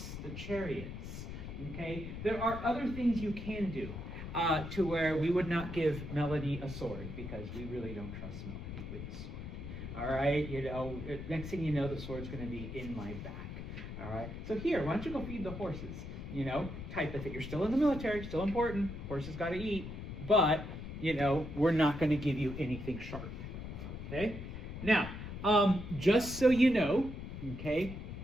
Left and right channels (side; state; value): left; noise; rumble, 8 dB below the sound